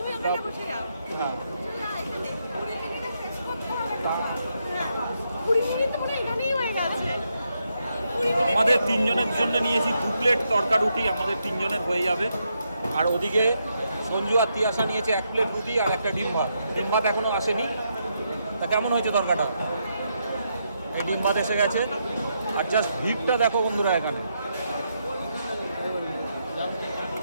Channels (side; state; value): both; inverted; correlation -0.80